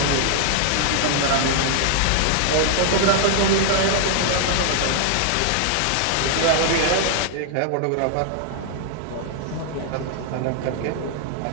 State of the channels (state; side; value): different; both; correlation 0.00